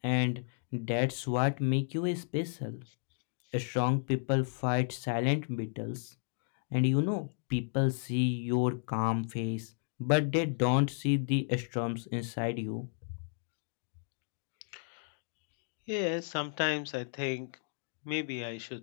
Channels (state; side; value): silent; right; digital silence